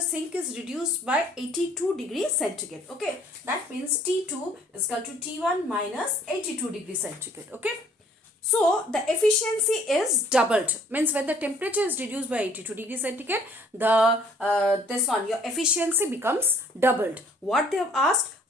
sink is reduced by 82 degrees centigrade. Okay, that means T2 is equal to T1 minus 82 degrees centigrade. Okay, so the efficiency is doubled. Means when the temperature is reduced by 82 degrees centigrade, your efficiency becomes doubled. What they have asked?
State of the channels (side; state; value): both; normal; correlation 0.58